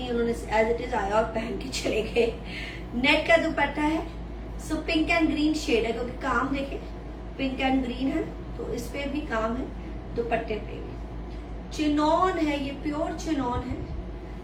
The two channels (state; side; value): identical; both; correlation 1.00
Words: उन्होंने एज इट इज आया और पहन के चले गए। नेट का दुपट्टा है, so pink and green shade है, क्योंकि काम देखे पिंक एंड ग्रीन है तो इस पे भी काम है, दुपट्टे पे भी। चिनॉन है, ये प्योर चिनॉन है।